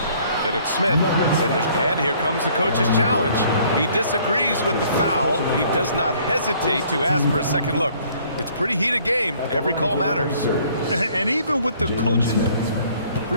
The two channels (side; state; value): both; inverted; correlation -0.59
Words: Then it's Smith. And here comes the coach's challenge. He disagrees with the foul. He does not hesitate to ask for a second look. It's a pretty heated game. Every call matters. And even with the coaches,